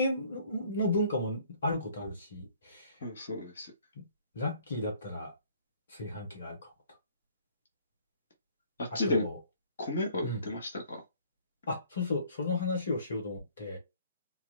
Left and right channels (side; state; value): both; inverted; correlation -0.57